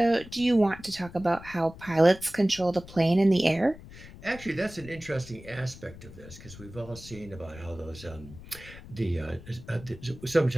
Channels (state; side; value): noise; left; rumble, 17 dB below the sound